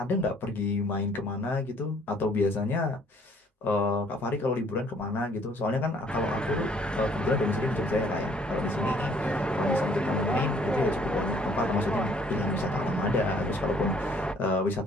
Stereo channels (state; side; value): normal; both; correlation 0.60